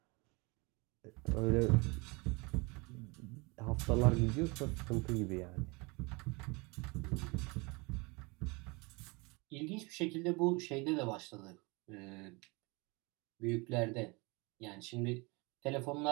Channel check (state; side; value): quieter; left; 27.3 dB